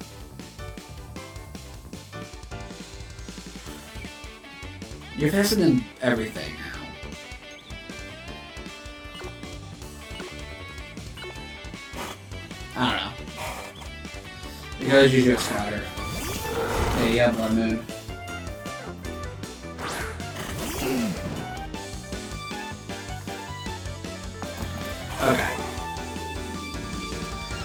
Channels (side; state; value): both; identical; correlation 1.00